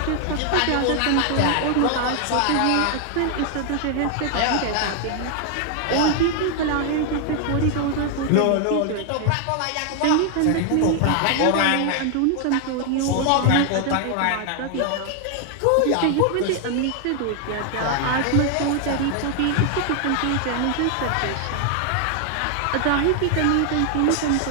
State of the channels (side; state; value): both; different; correlation 0.00